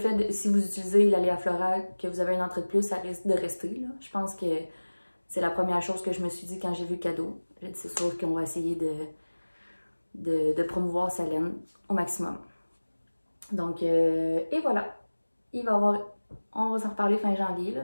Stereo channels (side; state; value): both; inverted; correlation -1.00